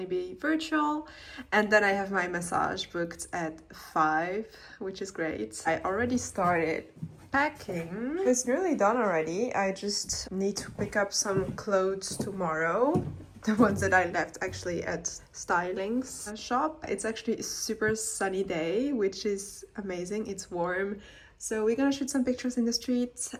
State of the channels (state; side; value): identical; both; correlation 1.00